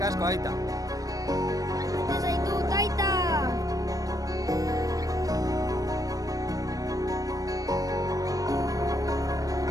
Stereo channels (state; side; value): late; left; 0.17 ms